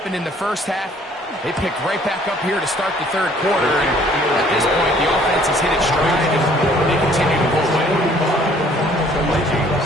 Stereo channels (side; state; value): both; normal; correlation 0.58